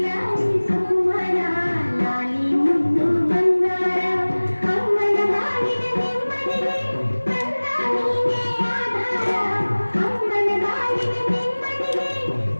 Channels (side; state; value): both; inverted; correlation -1.00